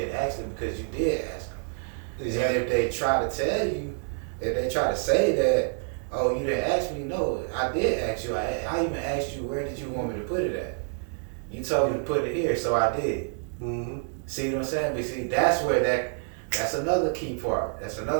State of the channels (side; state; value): left; silent; 60 dB below the other